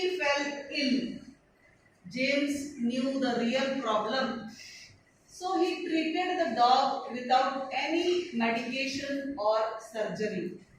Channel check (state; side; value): identical; both; correlation 1.00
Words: fell ill. James knew the real problem, so he treated the dog without any medication or surgery.